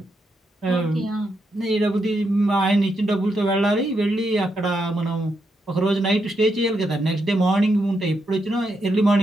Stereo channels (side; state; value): both; normal; correlation 0.82